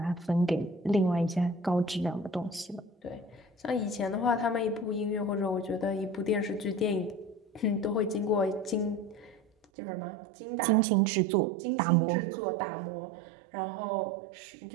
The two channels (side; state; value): left; drops out; at 9.7 s